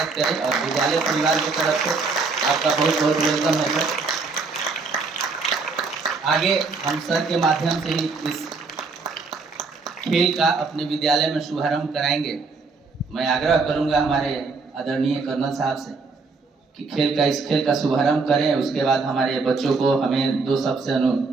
करें और विद्यालय परिवार की तरफ से आपका बहुत बहुत वेलकम है सर। आगे हम सर के माध्यम से ही इस खेल का अपने विद्यालय में शुभारंभ कराएंगे। मैं आग्रह करूंगा हमारे आदरणीय कर्नल साहब से कि इस खेल का शुभारंभ करें। उसके बाद हमारे बच्चों को हमें दो शब्द से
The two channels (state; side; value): quieter; left; 4.3 dB